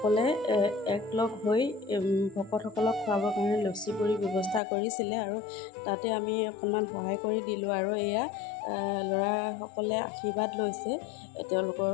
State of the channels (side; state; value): right; drops out; at 4.6 s